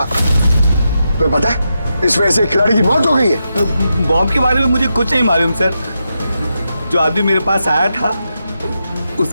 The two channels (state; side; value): inverted; both; correlation -0.86